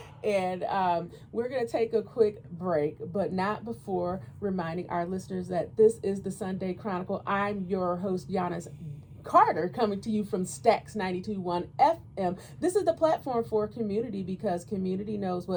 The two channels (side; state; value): both; identical; correlation 1.00